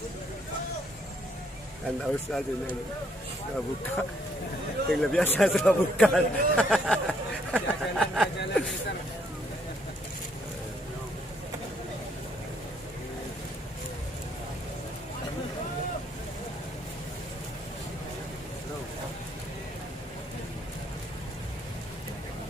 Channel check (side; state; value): both; normal; correlation 0.69